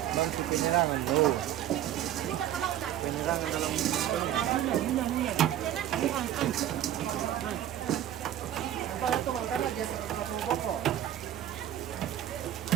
Masih penyerangan tuh. Penyerangan dalam Para to mangkana geser ke satu pokok.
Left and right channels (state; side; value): quieter; left; 11.8 dB